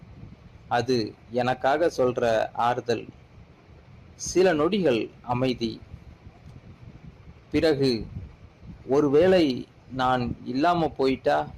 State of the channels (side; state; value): both; identical; correlation 1.00